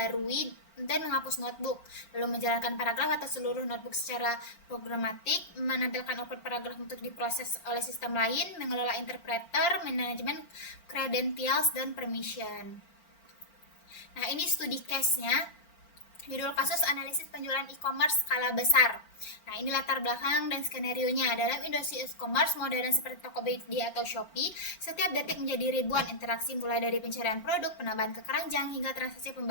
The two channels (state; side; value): late; right; 5.7 ms